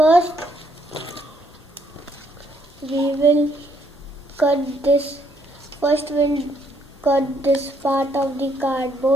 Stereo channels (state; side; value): normal; both; correlation 0.70